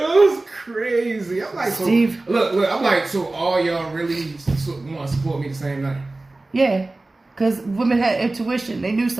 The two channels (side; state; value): left; quieter; 3.0 dB